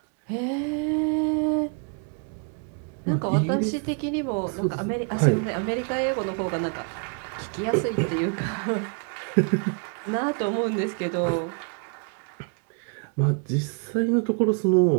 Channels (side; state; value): left; quieter; 38.5 dB